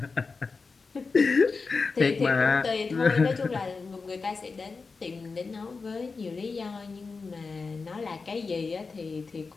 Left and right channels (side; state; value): right; quieter; 4.4 dB